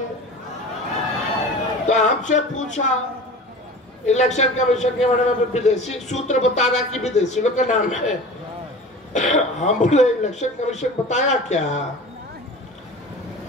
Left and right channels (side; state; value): both; normal; correlation 0.37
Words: तो हमसे पूछा इलेक्शन कमीशन के बारे में, विदेशी सूत्र बता रहा कि विदेशी लोग का नाम है। हम बोले इलेक्शन कमीशन बताया क्या?